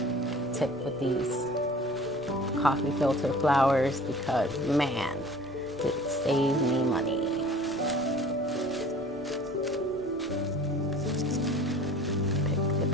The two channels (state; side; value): normal; both; correlation 0.46